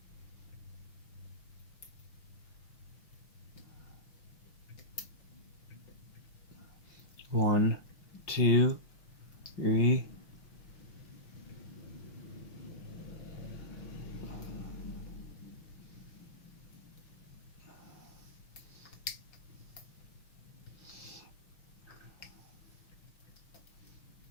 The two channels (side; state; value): right; late; 5.6 ms